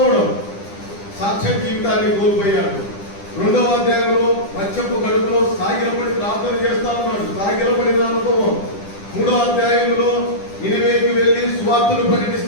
సాక్ష్య జీవితాన్ని కోల్పోయాడు. 2వ అధ్యాయంలో మత్స్యపు కడుపులో సాగిలపడి ప్రార్థన చేస్తా ఉన్నాడు, సాగిలపడిన అనుభవం. 3వ అధ్యాయంలో నినివేకి వెళ్ళి సువార్తను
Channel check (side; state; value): right; late; 10 ms